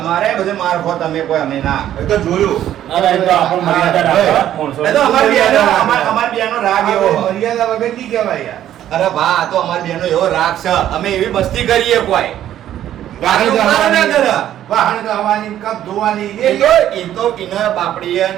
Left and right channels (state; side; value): quieter; left; 11.7 dB